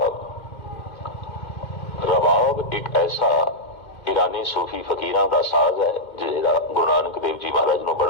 रबाब एक ऐसा ईरानी सूफी फकीरां का साज है जिहड़ा गुरु नानक देव जी महाराज नूं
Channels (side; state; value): right; late; 2.1 ms